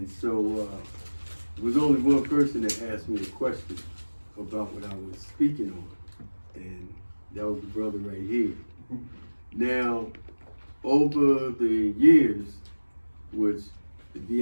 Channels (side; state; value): both; inverted; correlation -1.00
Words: so there was only one person that asked me a question about what I was speaking on. And that was the brother right here. Now, over the years, which, to